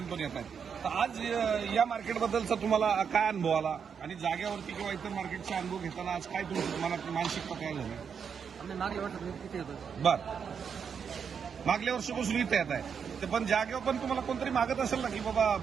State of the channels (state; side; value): quieter; left; 6.8 dB